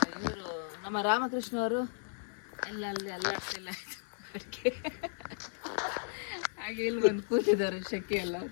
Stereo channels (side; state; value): right; silent; digital silence